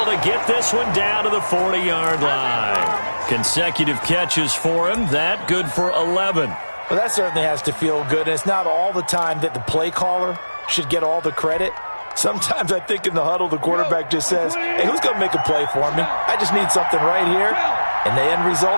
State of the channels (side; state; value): both; inverted; correlation -1.00